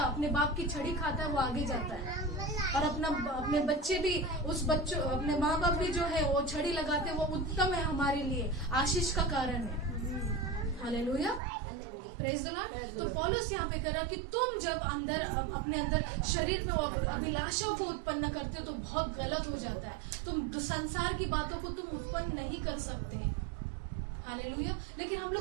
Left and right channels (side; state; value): left; drops out; at 11.4 s